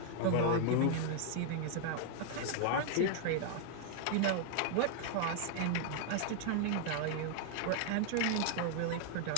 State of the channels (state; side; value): different; both; correlation 0.00